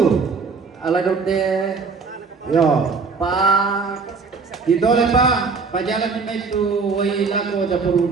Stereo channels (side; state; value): left; quieter; 4.8 dB